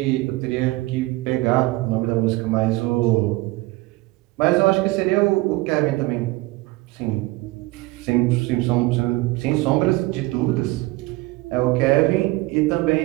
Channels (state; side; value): quieter; left; 20.8 dB